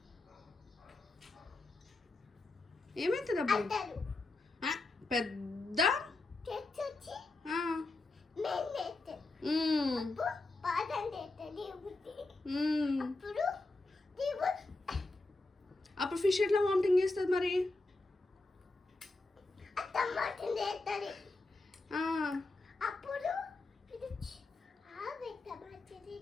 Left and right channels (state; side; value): quieter; right; 3.2 dB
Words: అప్పుడు పెద్ద అప్పుడు ఫిష్ ఎట్లా వామిటింగ్ చేస్తుంది మరి? అప్పుడు